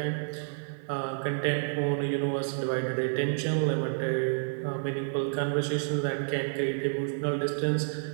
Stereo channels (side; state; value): left; silent; 55 dB below the other